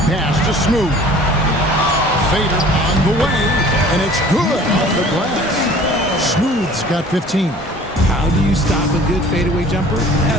Pass to Smooth. Fader on the way, and it's good off the glass. Smooth's got 15. How do you stop a good fadeaway jumper? Yeah,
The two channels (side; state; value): both; normal; correlation 0.48